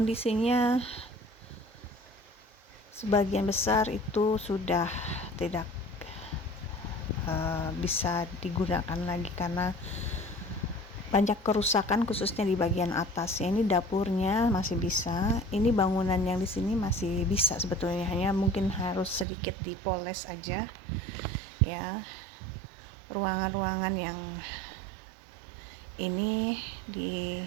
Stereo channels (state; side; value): drops out; left; at 19.2 s